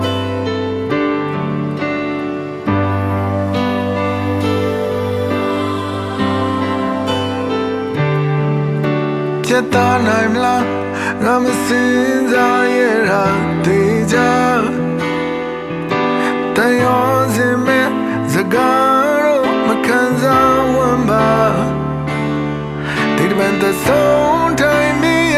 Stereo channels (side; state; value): both; identical; correlation 1.00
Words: ချက်သားနိုင်မလားငါမစင်စားရတာတေချာတန်ရောစင်မဲ့စကားတော့မခံစားဝမ်းပါဒီတမန်တဲ့ဆုံးတိုင်းမီးရ